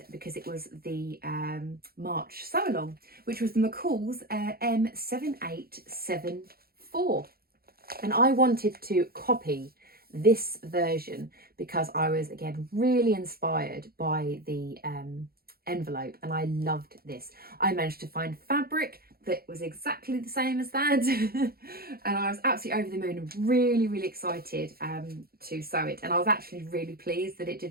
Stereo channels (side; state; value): left; late; 0.44 ms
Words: because it was the March Sew Along, which was the McCalls M7874. And I wanted to copy this version because I was, again, really inspired by the envelope, and I loved this. I managed to find fabric that was exactly the same as that and I was absolutely over the moon and really, really excited to sew it. And I was actually really pleased that it